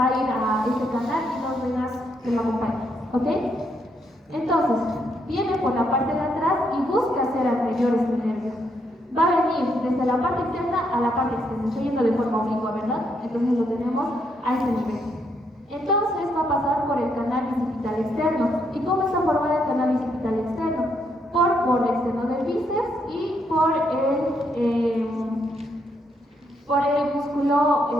a ir a este canal y dos venas que lo acompañan, ¿ok? Entonces, viene por la parte de atrás y busca hacer anterior este nervio. Va a venir desde la parte interna a la parte externa, estoy yendo de forma oblicua, ¿verdad? Entonces lo tenemos a este nivel. Entonces va a pasar por el canal bicipital externo. ¿Y cómo está formado el canal bicipital externo? Por borde externo del bíceps y por el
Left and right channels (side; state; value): both; normal; correlation 0.76